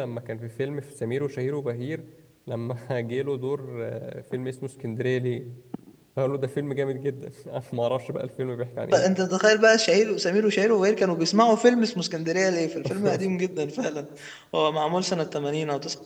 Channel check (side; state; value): both; identical; correlation 1.00